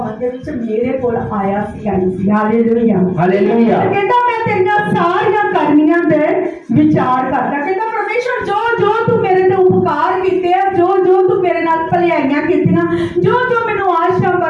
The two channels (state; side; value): identical; both; correlation 1.00